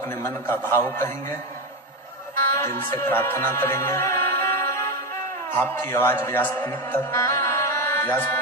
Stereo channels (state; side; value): normal; both; correlation 0.13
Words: मन का भाव कहेंगे, दिल से प्रार्थना करेंगे। आपकी आवाज व्यासपीठ तक,